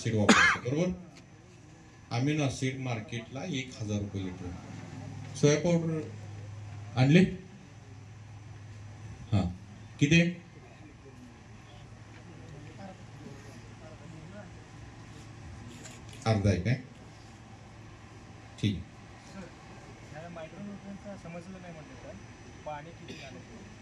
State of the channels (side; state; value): both; identical; correlation 1.00